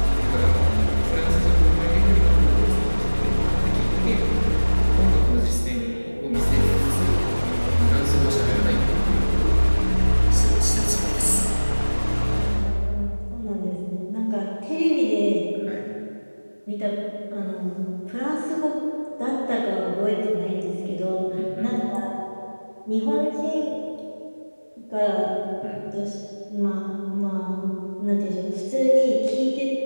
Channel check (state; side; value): inverted; both; correlation -1.00